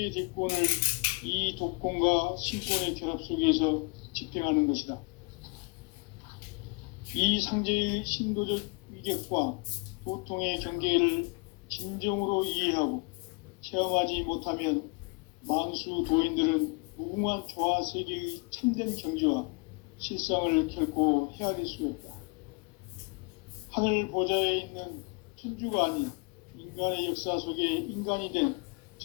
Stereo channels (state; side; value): quieter; right; 31.5 dB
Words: 대권을 이 독권과 신권의 결합 속에서 집행하는 것이다. 이 상징의 신도적 위격과 도통의 경계를 진정으로 이해하고 체험하지 못하면 만수 도인들은 무궁한 조화 세계의 참된 경지와 실상을 결코 헤아릴 수가 없다. 하늘 보좌에 있는 천주가 아닌 인간의 역사 속에 인간이 된